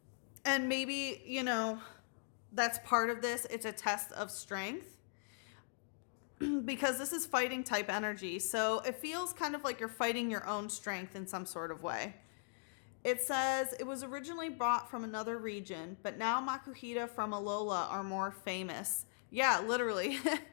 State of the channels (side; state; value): right; silent; digital silence